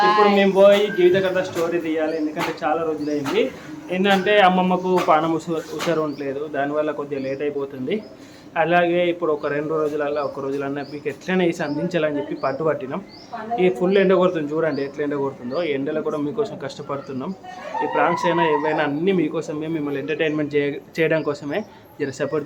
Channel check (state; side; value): identical; both; correlation 1.00